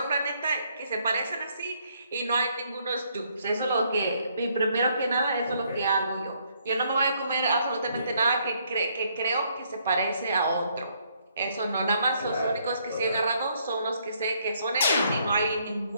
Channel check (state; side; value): inverted; both; correlation -0.70